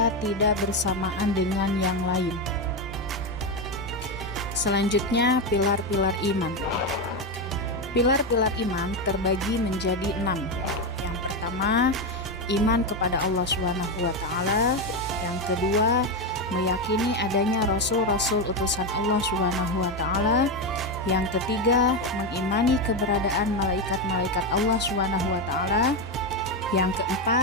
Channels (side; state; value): left; noise; hum, 22 dB below the sound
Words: tidak bersamaan dengan yang lain. Selanjutnya, pilar-pilar iman. Pilar-pilar iman terbagi menjadi 6. Yang pertama, iman kepada Allah SWT. Yang kedua, meyakini adanya rasul-rasul utusan Allah SWT. Yang ketiga, mengimani keberadaan malaikat-malaikat Allah SWT. Yang